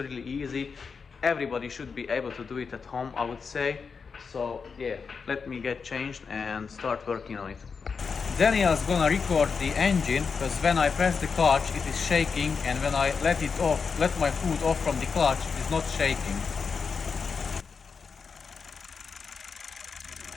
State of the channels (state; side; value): quieter; right; 5.5 dB